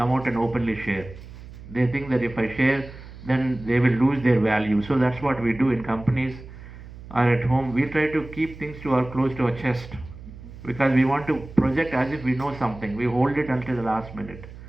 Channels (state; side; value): noise; right; hum, 16 dB below the sound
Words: out and openly share. They think that if I share, then they will lose their value. So that's what we do in companies or at home. We try to keep things close to our chest, because we want to project as if we know something. We hold it until the last minute.